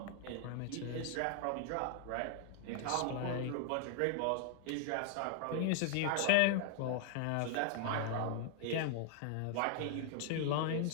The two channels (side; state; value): both; different; correlation 0.00